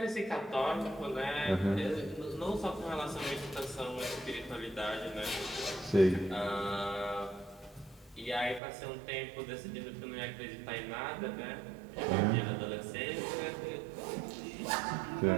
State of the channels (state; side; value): drops out; left; at 8.6 s